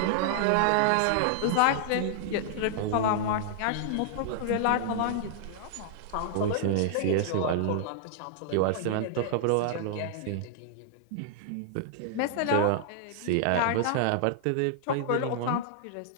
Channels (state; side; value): different; both; correlation -0.01